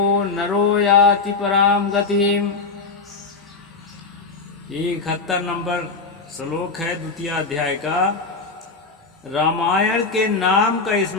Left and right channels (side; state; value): right; quieter; 4.2 dB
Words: नरो याति पराम गतिम। 71 नंबर श्लोक है 2 अध्याय का। रामायण के नाम का